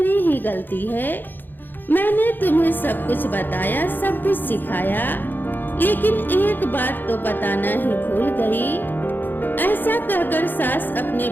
ही गलती है। मैंने तुम्हें सब कुछ बताया, सब कुछ सिखाया, लेकिन एक बात तो बताना ही भूल गई। ऐसा कहकर सास अपने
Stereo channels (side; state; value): right; late; 0.092 ms